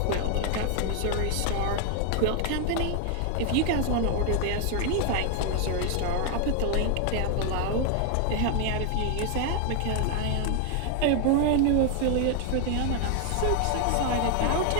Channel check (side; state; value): both; different; correlation 0.00